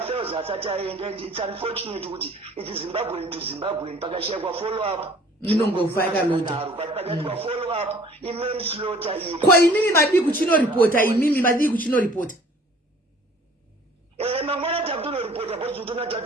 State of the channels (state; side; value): normal; both; correlation 0.52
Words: asati aenda and its unfortunate kuti iti zimbabwean to zimbabwean pakashayikwa follow up inongofa yakaloda pakashayikwa follow up imanslaughter ko imimi madii kuchinoripota imimi madii kuchinoripota mangwana takutonoripota bhozi utona